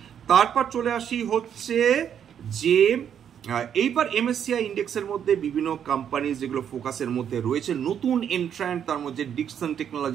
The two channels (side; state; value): left; quieter; 8.7 dB